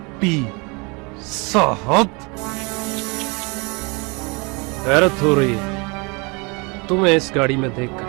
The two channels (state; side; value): quieter; left; 29.6 dB